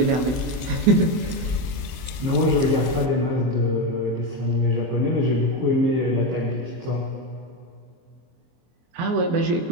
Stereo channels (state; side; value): late; left; 23 ms